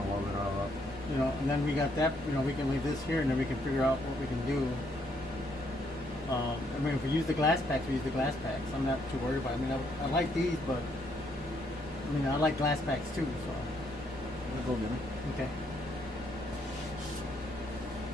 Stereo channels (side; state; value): both; normal; correlation 0.72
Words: weld it all up. you know, and then we got that. You know, we can leave this here, and then we can figure out what we can do. I mean, if we use the glass packs, we use the glass packs. I'm not too worried about it. I mean, I like these, but I mean, I like glass packs too. So Just go get me. okay.